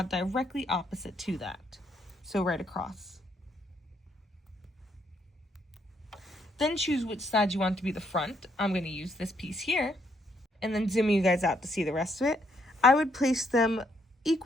directly opposite to that, so right across. Then choose which side you want to be the front. I'm going to use this piece here, and then zooming you guys out to see the rest of it. I would place them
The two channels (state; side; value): normal; both; correlation 0.72